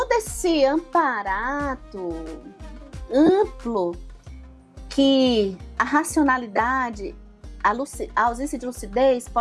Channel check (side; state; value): both; identical; correlation 1.00